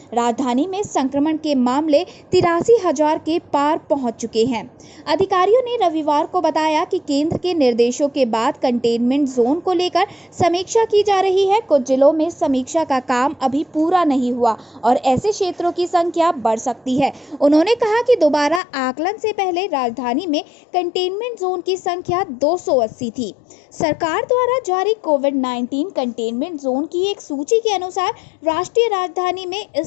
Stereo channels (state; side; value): drops out; right; at 18.6 s